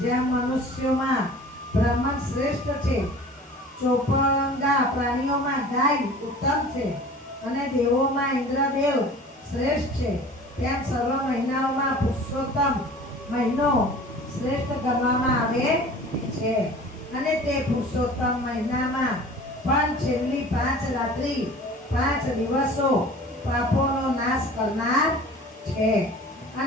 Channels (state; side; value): normal; both; correlation 0.43